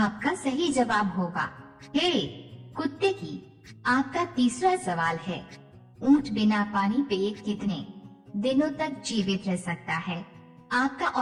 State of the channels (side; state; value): both; identical; correlation 1.00